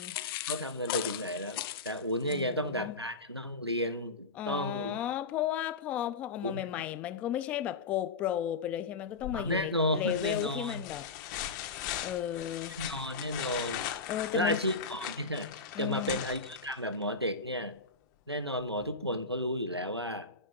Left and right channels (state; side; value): quieter; right; 3.7 dB